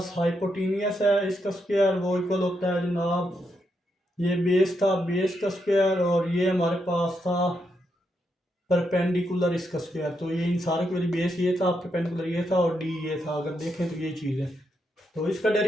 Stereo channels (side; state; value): both; normal; correlation 0.81